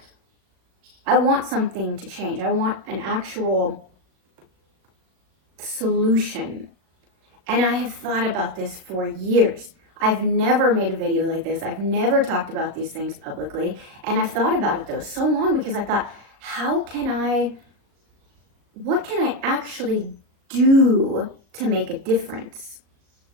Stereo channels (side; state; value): left; late; 37 ms